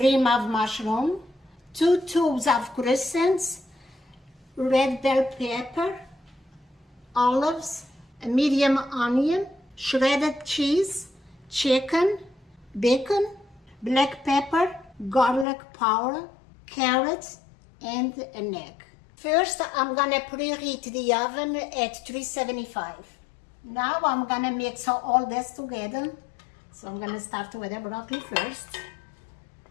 of mushroom, 2 tubes of crescents, red bell pepper, olives, a medium onion, shredded cheese, chicken, bacon, black pepper, garlic powder, carrots, and an egg. First, I'm gonna preheat the oven at 375. Now I'm gonna mix all this together. So I'm gonna start with the broccoli first.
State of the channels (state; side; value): drops out; right; at 15.5 s